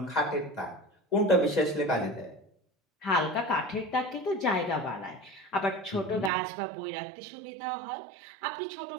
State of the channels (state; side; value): drops out; left; at 6.3 s